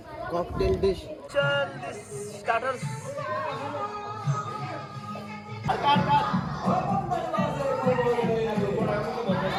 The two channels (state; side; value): identical; both; correlation 1.00